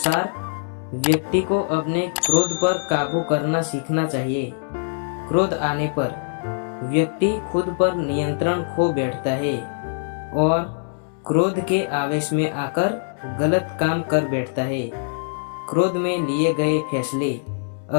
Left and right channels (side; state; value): right; silent; 63 dB below the other